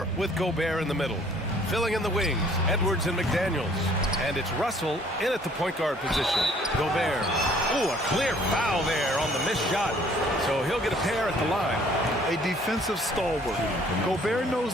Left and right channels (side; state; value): both; normal; correlation 0.58